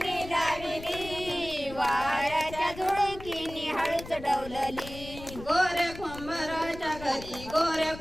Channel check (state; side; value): noise; left; rumble, 14 dB below the sound